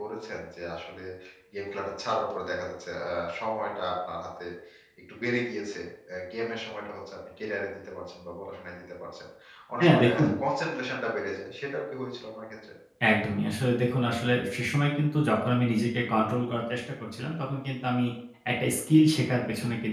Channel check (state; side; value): identical; both; correlation 1.00